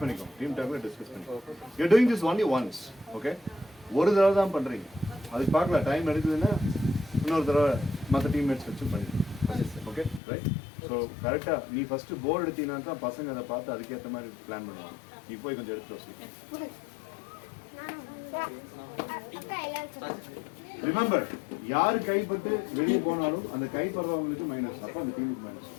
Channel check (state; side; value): drops out; right; at 10.2 s